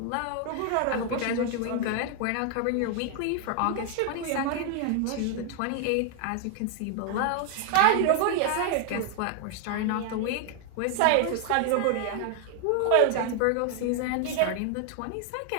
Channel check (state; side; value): different; both; correlation 0.00